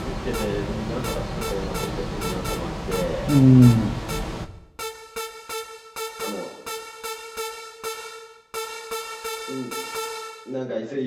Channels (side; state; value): both; identical; correlation 1.00